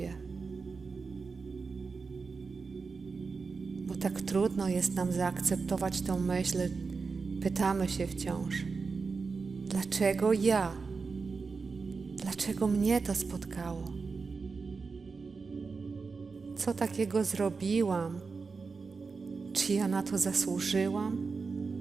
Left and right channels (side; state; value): left; quieter; 4.7 dB